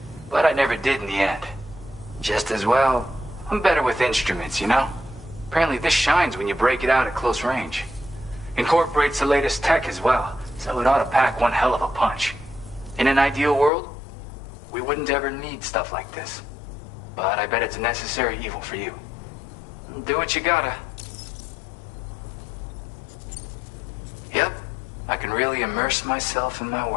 But I never did in the end. Just as well, I'm better with instruments, you know? Apparently this shines when you break it out at close range. Incorporates the latest tech as well, so it ought to pack one hell of a punch. In an ideal world, we wouldn't ever need stuff like this. But I bet it's a necessary evil for you. Do what you gotta. Yep, I can really immerse myself in my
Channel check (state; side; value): drops out; right; at 13.7 s